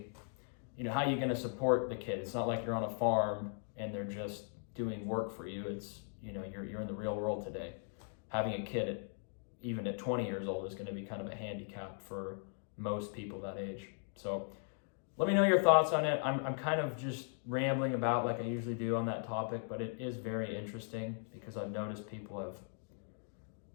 you know, how are you going to support the kid? It's not like you're on a farm and they're just doing work for you. It's, you know, you're in the real world today. Having a kid even at 20 years old is going to be kind of a handicap for most people that age. So let me know your thoughts on it. I'm kind of just rambling about like I usually do on that topic, but it is very interesting because I've noticed people have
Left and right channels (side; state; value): right; silent; 52 dB below the other